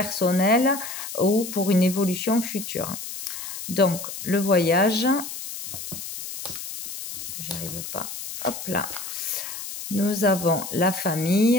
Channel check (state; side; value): noise; left; hiss, 8 dB below the sound